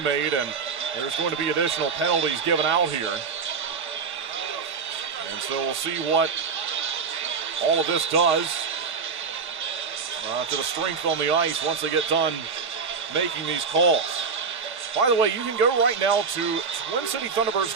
and there's going to be additional penalties given out here. And so we'll see what all of this does to the strength on the ice once they get done making these calls. By the way, you can go right now to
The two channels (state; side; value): quieter; left; 5.5 dB